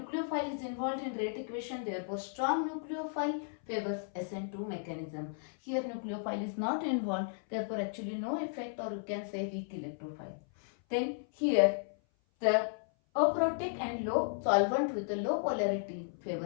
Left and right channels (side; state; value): right; silent; 55 dB below the other